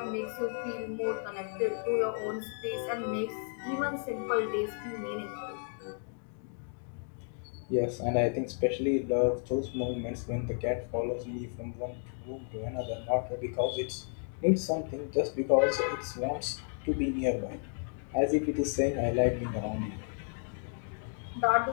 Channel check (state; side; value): silent; right; 56 dB below the other